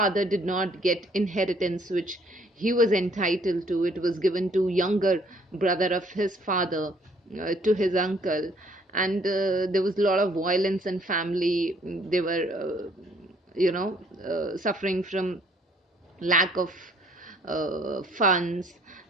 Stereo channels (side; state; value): both; normal; correlation 0.62